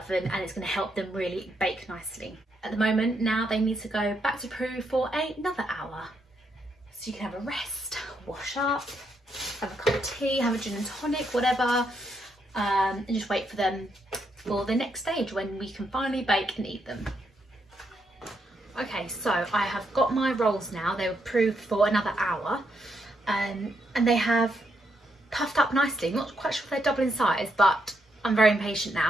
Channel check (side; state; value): both; normal; correlation 0.78